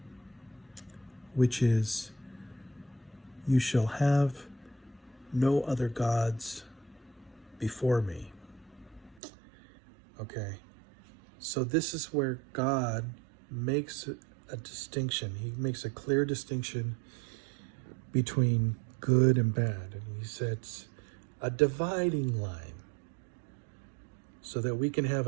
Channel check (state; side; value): drops out; left; at 9.2 s